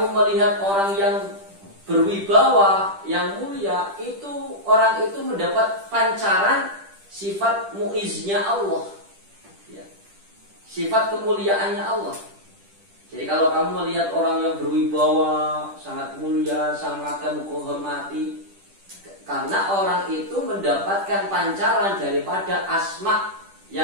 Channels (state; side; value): late; left; 10 ms